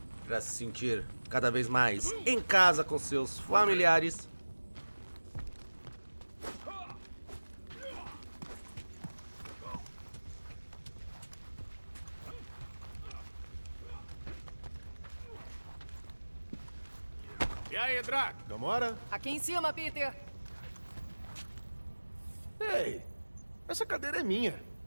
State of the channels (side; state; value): both; inverted; correlation -1.00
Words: para se sentir cada vez mais em casa com seus familiares. E aí, Drax? Gamora? Aqui em cima, Peter. Ei, essa cadeira é minha.